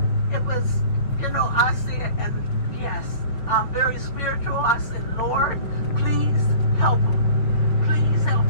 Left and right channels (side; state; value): right; late; 5.8 ms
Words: said, and yes, I'm very spiritual. I said, Lord, please help him. Please help